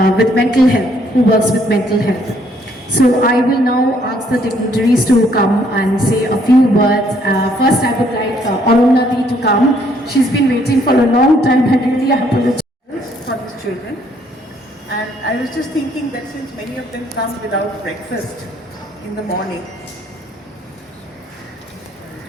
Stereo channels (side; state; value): both; normal; correlation 0.66